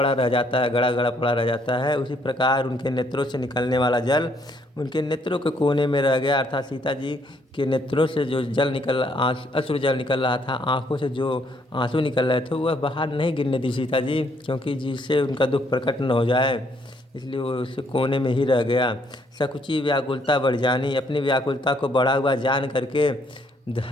रह जाता है, गड़ा गड़ा पड़ा रह जाता है, उसी प्रकार उनके नेत्रों से निकलने वाला जल उनके नेत्रों के कोने में रह गया। अर्थात सीता जी के नेत्रों से जो जल अश्रु जल निकल रहा था, आँखों से जो आंसू निकल रहे थे, वह बाहर नहीं गिरने दी सीता जी, क्योंकि जिससे उनका दुख प्रकट न हो जाए। इसलिए वो उस कोने में ही रह गया। सकुची व्याकुलता बढ़ जानी, अपनी व्याकुलता को बढ़ा हुआ जान करके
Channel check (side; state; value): both; normal; correlation 0.69